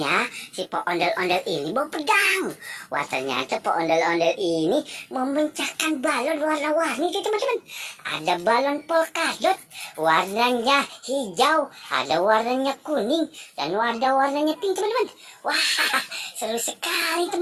ya? Si Pak ondel-ondel ini bawa pedang. Wah, ternyata Pak ondel-ondel ini memecahkan balon warna-warni tuh teman-teman. Ada balon polkadot, warnanya hijau, ada warnanya kuning, dan warnanya pink teman-teman. Wah, seru sekali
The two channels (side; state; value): both; identical; correlation 1.00